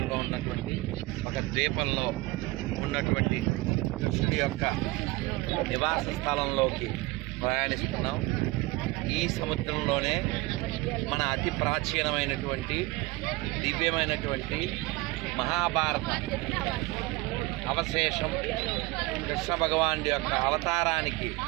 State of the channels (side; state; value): left; quieter; 21.5 dB